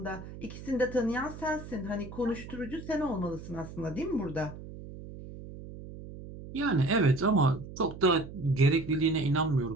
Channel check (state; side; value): noise; right; hum, 13 dB below the sound